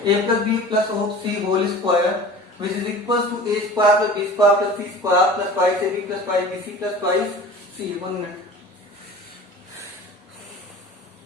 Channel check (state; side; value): normal; both; correlation 0.40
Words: A plus b plus c whole square, which is equals to a square plus b square plus c square plus twice ab plus twice bc plus twice c. 1 minute.